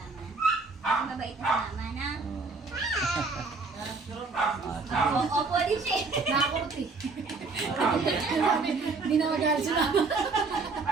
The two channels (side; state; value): left; quieter; 4.1 dB